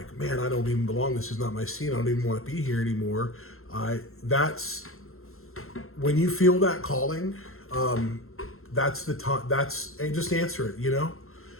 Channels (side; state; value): right; late; 0.62 ms